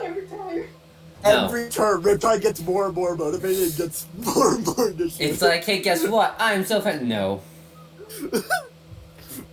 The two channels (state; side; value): identical; both; correlation 1.00